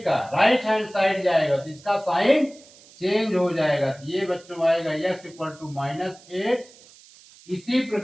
का राइट हैंड साइड जाएगा तो इसका साइन चेंज हो जाएगा, तो ये बच्चों आएगा x इक्वल टू -8। इसी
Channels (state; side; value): noise; right; hiss, 24 dB below the sound